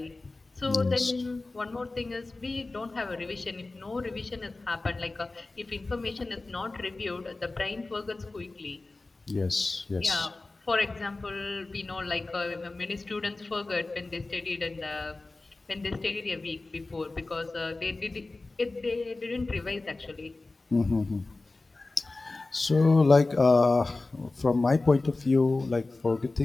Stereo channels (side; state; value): right; quieter; 3.3 dB